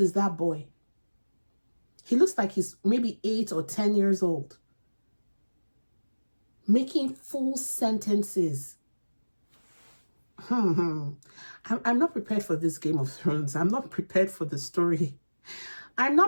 that boy? He looks like he's maybe 8 or 10 years old. Making full sentences. I'm not prepared for this Game of Thrones. I'm not prepared for the story. I'm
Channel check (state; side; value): inverted; both; correlation -1.00